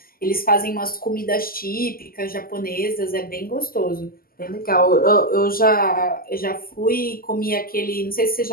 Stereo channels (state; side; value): late; right; 0.42 ms